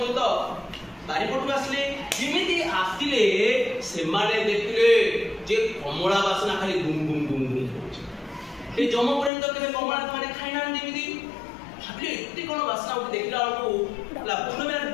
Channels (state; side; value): drops out; right; at 9.3 s